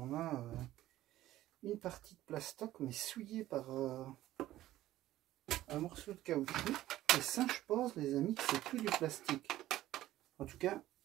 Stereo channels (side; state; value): left; quieter; 14.7 dB